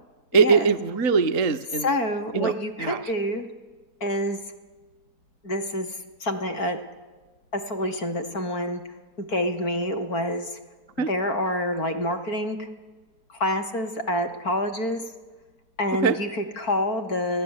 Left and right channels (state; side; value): late; right; 4.4 ms